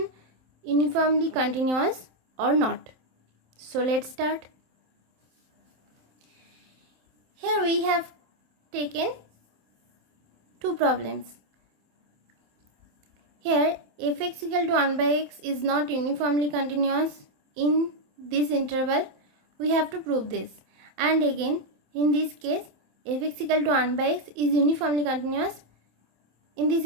uniformly continuous or not? So let's start. Here we have taken two problems. Here f(x) equal to 1 by x is not uniformly continuous in this interval. We have to prove this. And again, in this case, f(x) equal to 1 by x is uniformly continuous in this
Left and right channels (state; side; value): late; left; 27 ms